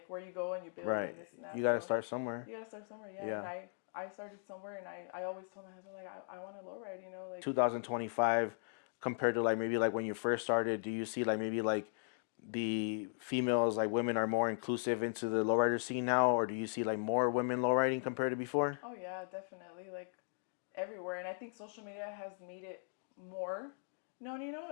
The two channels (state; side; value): silent; right; digital silence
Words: where you go and you build Right. and this and that. You got to So start somewhere. you got to start somewhere. Yeah. Yeah. And I started somewhere, and I always told my husband like, I want to lowride, like 2025 compared to like maybe like when you first started, do you see like maybe like the females, like women, are more inclusive into the lowrider scene now, or do you see like more women lowriding compared to before? Oh yeah, definitely. Like everywhere. And I think social media has made it more known,